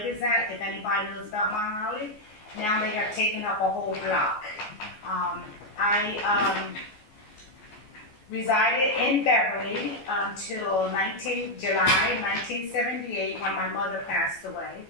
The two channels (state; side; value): late; right; 14 ms